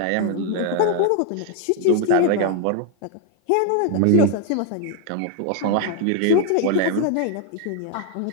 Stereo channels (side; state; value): both; different; correlation 0.00